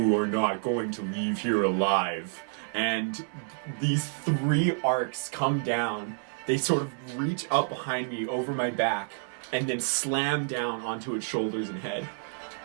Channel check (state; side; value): silent; left; 59 dB below the other